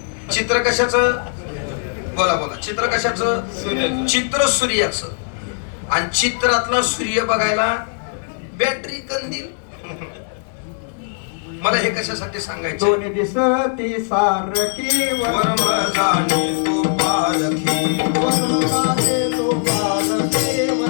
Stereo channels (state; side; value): silent; right; digital silence